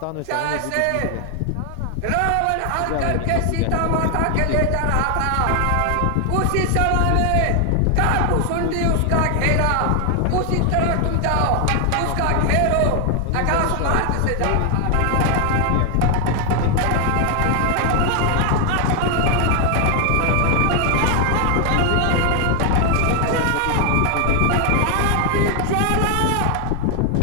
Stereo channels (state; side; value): different; both; correlation 0.00